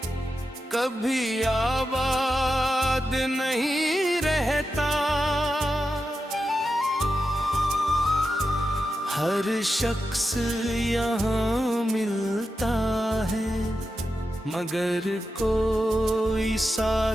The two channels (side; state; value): both; normal; correlation 0.89